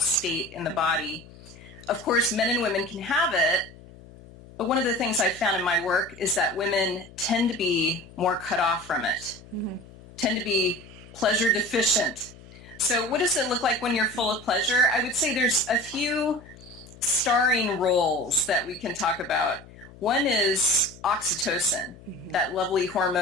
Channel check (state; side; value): noise; left; hum, 20 dB below the sound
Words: in the body. Of course, men and women can have it, but one of the things I've found in my work is that women tend to be more cut off from it, tend to be pleasure deficient. So what does it look like when you're full of pleasure? I would say there's a few starring roles that we can talk about. One is oxytocin, that lovely